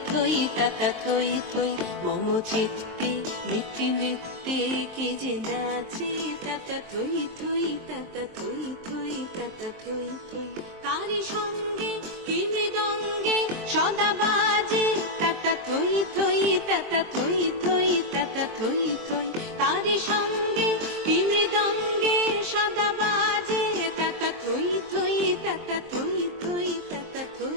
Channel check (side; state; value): left; late; 23 ms